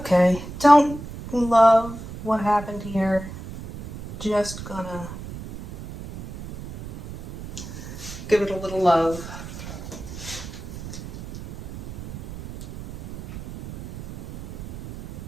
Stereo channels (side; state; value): right; noise; rumble, 12 dB below the sound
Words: don't love what happened here. Just gonna give it a little love.